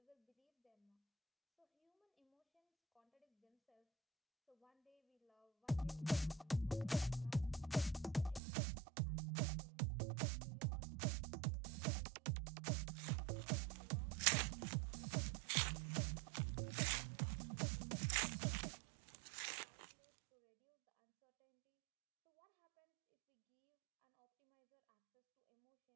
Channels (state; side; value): drops out; left; at 8.4 s